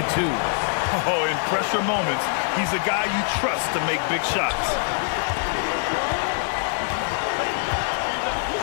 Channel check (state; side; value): silent; right; digital silence